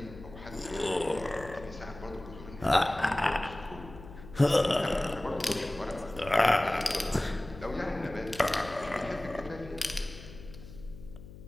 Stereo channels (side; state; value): left; noise; hum, 16 dB below the sound